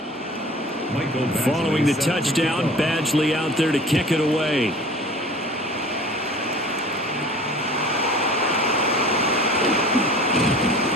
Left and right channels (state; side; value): normal; both; correlation 0.44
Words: Following the touchdown, Badgley out there to kick it away.